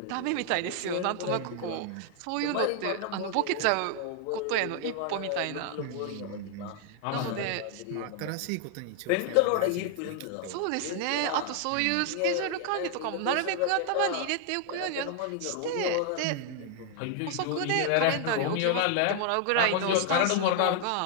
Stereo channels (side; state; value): both; different; correlation 0.00